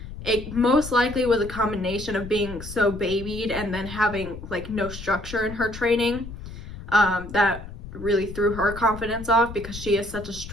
It most likely was a combination of being so babied and then having like no structure in her training that really threw her confidence off, because she is such a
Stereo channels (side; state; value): left; noise; rumble, 12 dB below the sound